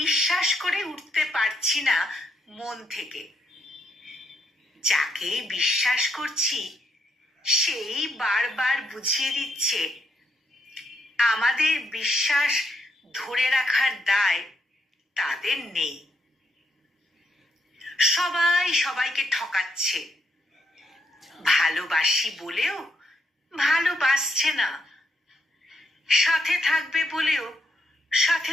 করে উঠতে পারছি না মন থেকে। যাকে বিশ্বাস করছি সেই বারবার বুঝিয়ে দিচ্ছে আমাদের বিশ্বাস ধরে রাখার দায় তাদের নেই। সবাই সবাইকে ঠকাচ্ছে, ভালোবাসি বলেও ভালোবাসছে না, সাথে থাকবে বলেও সাথে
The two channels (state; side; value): normal; both; correlation 0.76